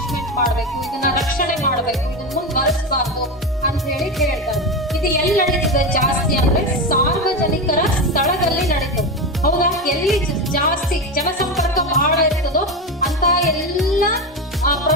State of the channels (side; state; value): both; normal; correlation 0.18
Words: ಮಾಡ್ಬೇಕು, ಇದನ್ನ ರಕ್ಷಣೆ ಮಾಡ್ಬೇಕು, ಇದನ್ನ ಮುಂದುವರಿಸಬಾರ್ದು ಅಂತ ಹೇಳಿ ಹೇಳ್ತಾರೆ. ಇದು ಎಲ್ಲಿ ನಡೀತದೆ ಜಾಸ್ತಿ ಅಂದ್ರೆ ಸಾರ್ವಜನಿಕರ ಸ್ಥಳದಲ್ಲಿ ನಡೀತದೆ. ಹೌದಾ? ಎಲ್ಲಿ ಜಾಸ್ತಿ ಜನಸಂಪರ್ಕ ಬಹಳ ಇರ್ತದೋ ಅಂತ ಎಲ್ಲ